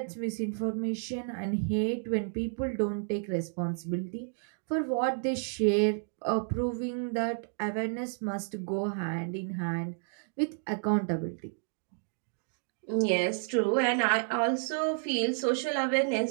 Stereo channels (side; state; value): left; silent; digital silence